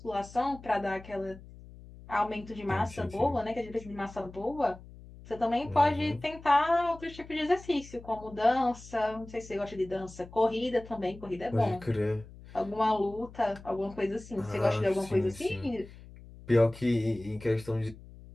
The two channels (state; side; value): noise; left; hum, 18 dB below the sound